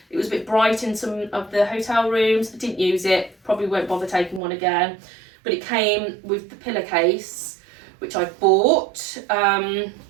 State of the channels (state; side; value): drops out; left; at 4.4 s